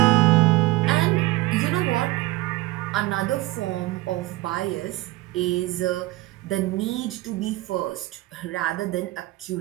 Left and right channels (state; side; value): quieter; left; 19.0 dB